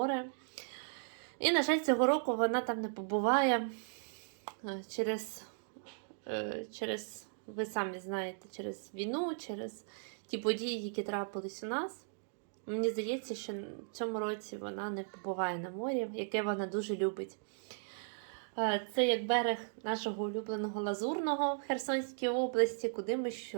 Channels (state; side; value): silent; left; digital silence